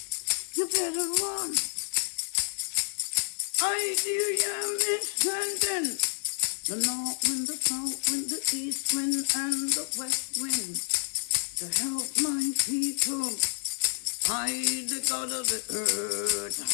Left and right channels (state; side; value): silent; right; 58 dB below the other